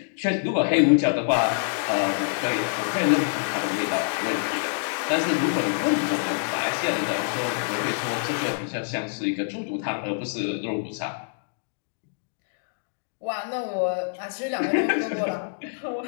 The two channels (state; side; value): silent; right; digital silence